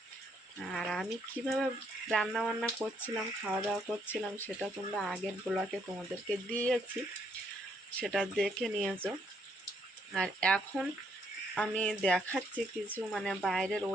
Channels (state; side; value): normal; both; correlation 0.71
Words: আর আমি কিভাবে রান্না বান্না করছিলাম, খাওয়া দাওয়া করছিলাম, সেটা তোমরা আগের ব্লগে তোমাদেরকে দিয়েছি, সেটা দেখে নিয়েছো। আর এখন আমি দেখাচ্ছি কিছু মানে বাইরের